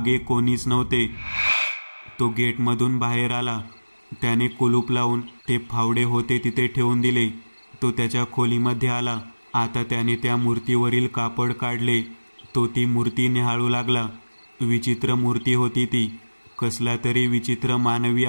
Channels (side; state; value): both; inverted; correlation -1.00